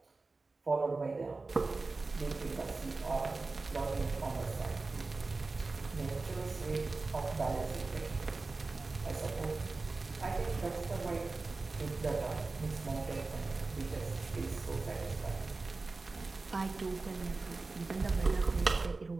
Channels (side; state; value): left; quieter; 3.7 dB